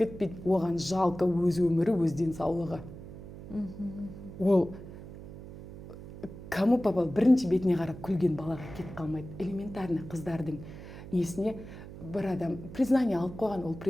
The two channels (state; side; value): noise; right; hum, 13 dB below the sound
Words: Оған жалко өз өмірі, өз денсаулығы. Ол кому попал, бірінші бетіне қарап күлген балаға кетіп қалмайды. Элементарный қыздардың несіне бір адам признание алып қойған, ол